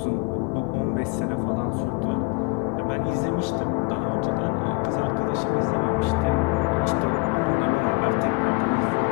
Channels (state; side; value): quieter; right; 28.7 dB